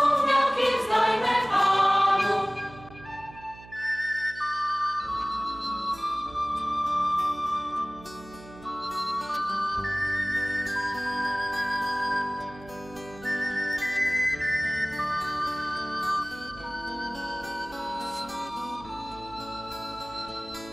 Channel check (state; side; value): noise; right; hum, 19 dB below the sound